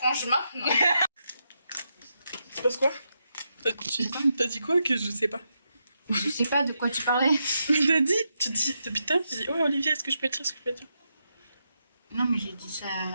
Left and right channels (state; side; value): inverted; both; correlation -0.84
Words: maintenant. Il se passe quoi? T'as dit quoi que je sais pas? Je sais pas de quoi tu parlais. T'as dit? Tu dis, depuis tout à l'heure, tu dis, ouais Olivia, est-ce que je peux te dire ce que je peux te dire? Non, mais j'ai dit ça